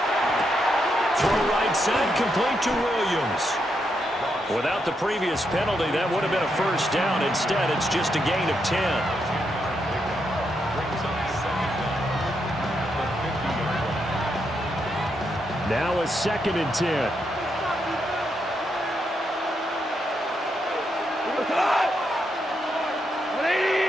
Throw right side, complete to Williams. Without the previous penalty, that would have been a first down. Instead, it's just a gain of 10. Now a 2nd and 10.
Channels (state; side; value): normal; both; correlation 0.81